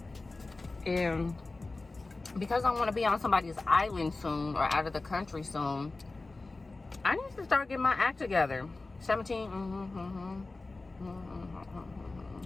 And because I want to be on somebody's island soon or out of the country soon, I need to start getting my act together. 17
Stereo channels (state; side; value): quieter; right; 3.4 dB